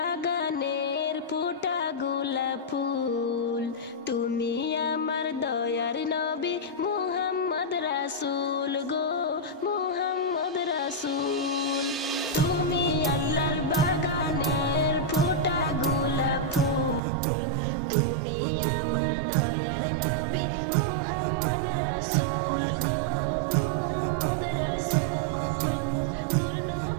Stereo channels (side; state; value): left; drops out; at 17.0 s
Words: ফোটা গোলাপ ফুল, তুমি আমার দয়ার নবী মুহাম্মদ রাসূল গো মুহাম্মদ রাসূল। তুমি আল্লাহর বাগানের ফোটা গোলাপ ফুল, তুমি আমার দয়ার নবী মুহাম্মদ রাসূল গো মুহাম্মদ রাসূল। নূর